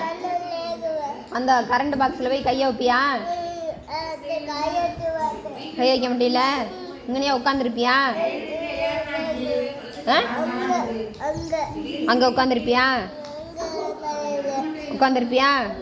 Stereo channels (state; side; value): identical; both; correlation 1.00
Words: அந்த கரண்ட் பாக்ஸில் போய் கையை வைப்பியா? கை வைக்க முடியல. இங்கனையா உட்காந்துருப்பியா? அங்கே உட்காந்துருப்பியா? உட்காந்துருப்பியா?